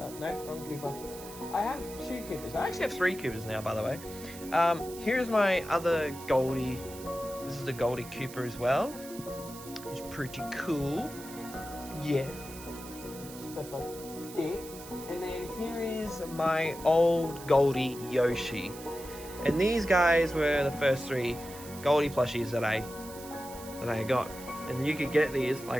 no, wrong Cooper. I have two Coopers. I actually have three Coopers now, by the way. Here's my other Goldie. This is the Goldie Cooper as well. It's pretty cool. Yeah. Stuff like that. And then here is my old Goldie Yoshi. And these guys were the first three Goldie plushies that I got. And you could get these,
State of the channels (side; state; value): right; noise; hiss, 15 dB below the sound